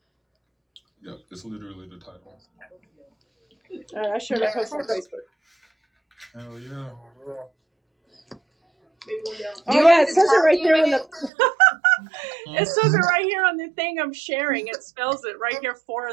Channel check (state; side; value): drops out; left; at 11.3 s